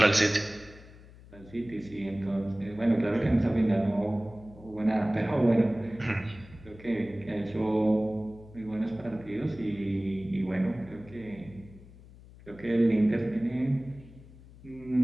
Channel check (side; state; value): left; noise; hum, 20 dB below the sound